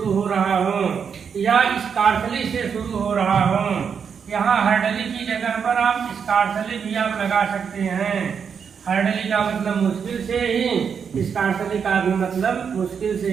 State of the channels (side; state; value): left; quieter; 6.8 dB